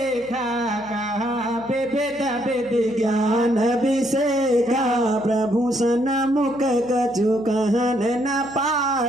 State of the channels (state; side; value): noise; right; hum, 26 dB below the sound